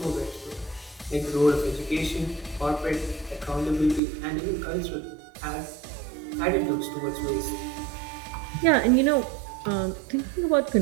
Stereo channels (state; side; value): drops out; left; at 4.0 s